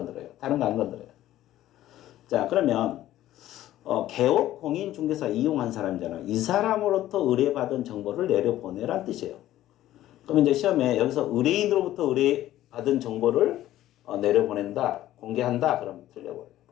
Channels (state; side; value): quieter; right; 13.8 dB